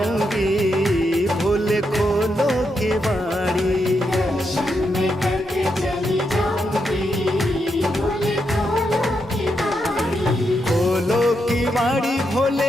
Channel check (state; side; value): normal; both; correlation 0.82